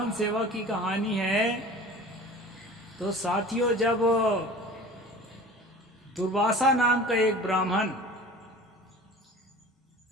सेवा की कहानी है। तो साथियों, जब दुर्वासा नाम का एक ब्राह्मण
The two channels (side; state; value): both; normal; correlation 0.41